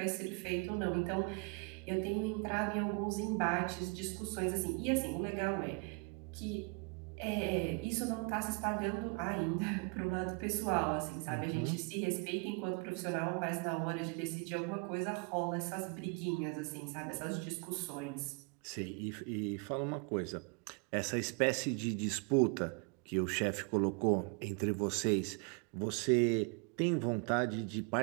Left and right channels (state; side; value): quieter; left; 32.2 dB